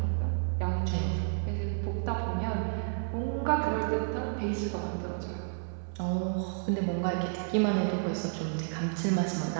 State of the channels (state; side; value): silent; left; 57 dB below the other